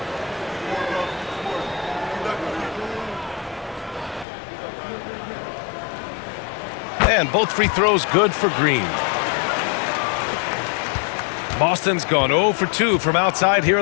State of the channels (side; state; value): right; drops out; at 4.2 s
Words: And both free throws good for Green. Boston's gone 0 for 2 from outside here